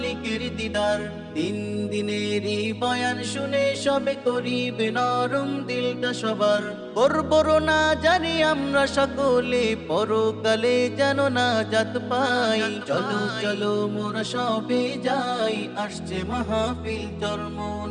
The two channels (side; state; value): both; identical; correlation 1.00